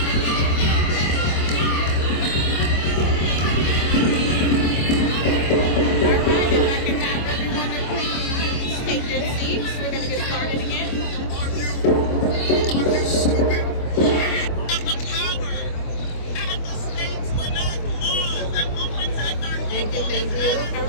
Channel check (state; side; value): late; right; 25 ms